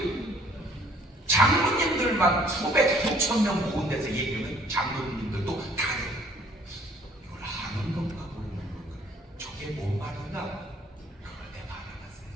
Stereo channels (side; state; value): both; normal; correlation 0.58